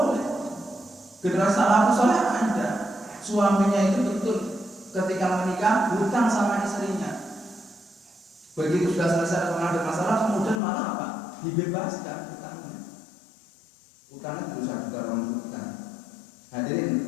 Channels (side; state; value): right; drops out; at 10.6 s